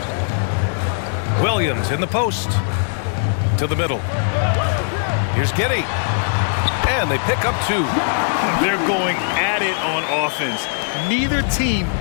Williams in the post. To the middle. Here's Giddey. And they pick up 2. They're going at it on offense. Neither team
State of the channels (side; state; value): right; silent; 66 dB below the other